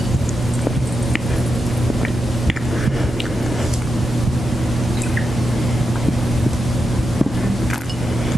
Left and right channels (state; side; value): normal; both; correlation 0.87